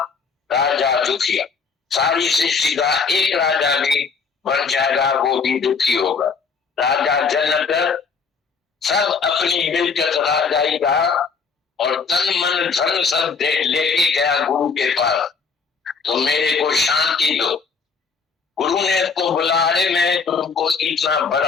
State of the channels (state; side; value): quieter; right; 5.3 dB